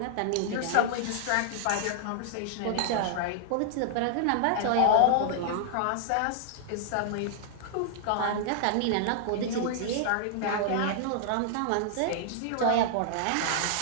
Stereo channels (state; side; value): different; both; correlation -0.01